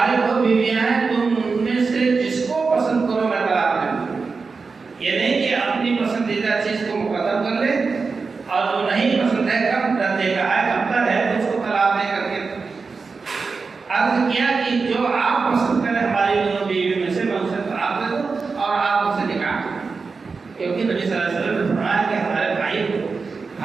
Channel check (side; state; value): left; quieter; 4.6 dB